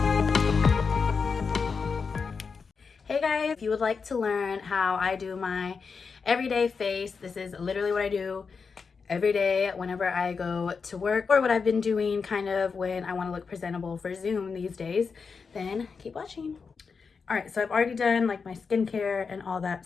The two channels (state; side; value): quieter; right; 5.3 dB